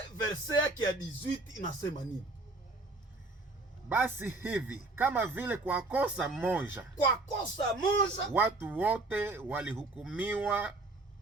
verset yake ya 18 inasema nini? Basi hivi kama vile kwa kosa moja watu wote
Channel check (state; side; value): quieter; left; 3.1 dB